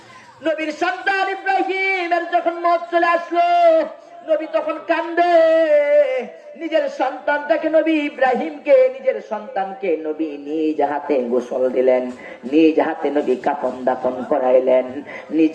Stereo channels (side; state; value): both; identical; correlation 1.00